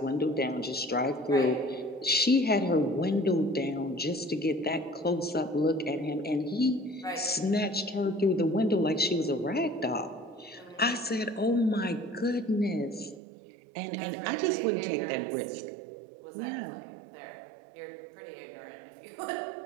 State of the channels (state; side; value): drops out; left; at 13.2 s